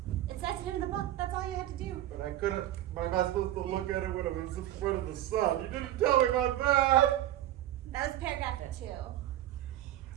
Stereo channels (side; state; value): left; quieter; 13.3 dB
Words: It says it in the book. That's all you have to do. But I couldn't. Am I supposed to look at it when it was in front of the sun? You didn't tell me about that. That was paragraph 2.